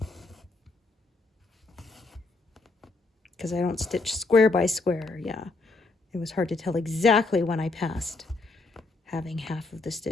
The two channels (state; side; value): quieter; right; 3.4 dB